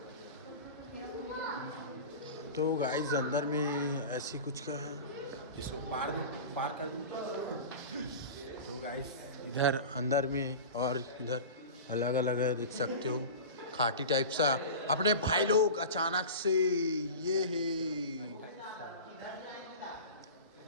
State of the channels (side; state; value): both; inverted; correlation -0.31